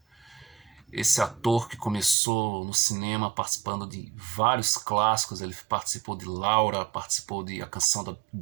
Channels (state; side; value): drops out; left; at 2.1 s